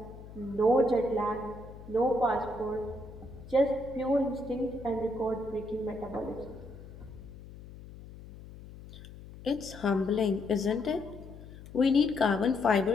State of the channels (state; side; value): noise; left; hum, 16 dB below the sound